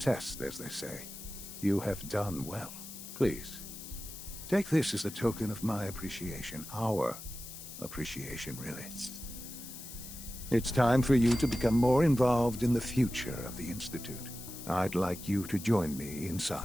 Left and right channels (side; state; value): left; noise; hiss, 12 dB below the sound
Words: as they say. You have done well. Please, take this as a token of my appreciation. Our appreciation, really. It's time for you to become more involved in the future of the Institute. I'd like you to join me